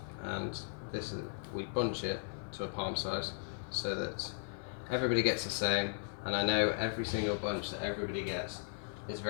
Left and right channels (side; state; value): right; silent; 53 dB below the other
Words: we bunch it to a palm size so that everybody gets the same. And I know every single bunch that everybody gets is